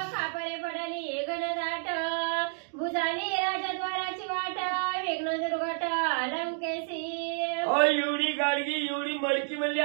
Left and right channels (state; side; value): silent; left; digital silence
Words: खापरे पडली घनदाट. भुजाली राजद्वाराची वाट विघ्न दुर्घट लंकेशी. एवढी गाडगी एवढी मडकी म्हणजे